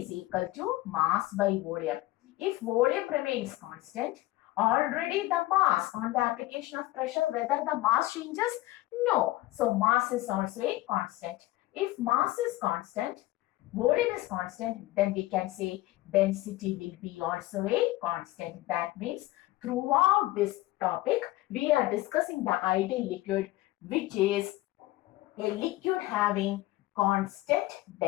is equal to mass by volume. If volume remains constant, already the mass on the application of pressure, whether the mass changes? No. So mass is also a constant. If mass is constant, volume is constant, then we can say density will be also a constant. That means throughout this topic, we are discussing the ideal liquid, which is a liquid having constant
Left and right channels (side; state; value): right; quieter; 17.8 dB